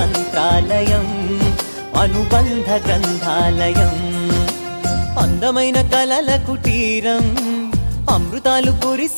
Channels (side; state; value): both; inverted; correlation -1.00